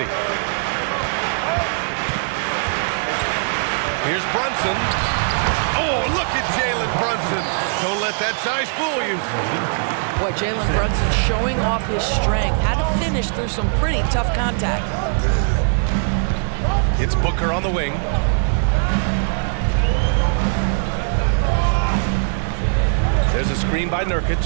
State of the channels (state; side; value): silent; left; 66 dB below the other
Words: Here's Brunson. Oh, look at Jalen Brunson. Don't let that size fool you. Boy, Jalen Brunson showing off his strength. Had to finish through some pretty tough contact. It's Booker on the wing. There's a screen by Nurkic.